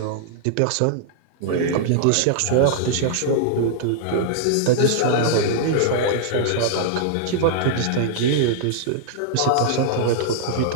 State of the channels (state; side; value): different; both; correlation -0.01